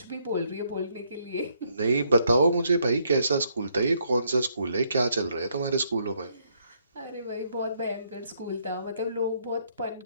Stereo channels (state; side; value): inverted; both; correlation -0.72